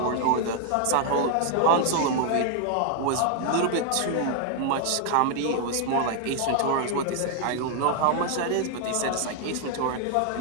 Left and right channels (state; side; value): different; both; correlation 0.00